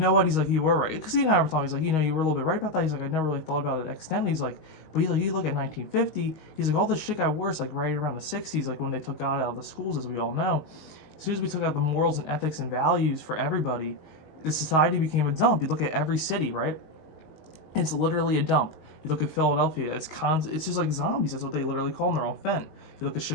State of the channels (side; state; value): right; late; 19 ms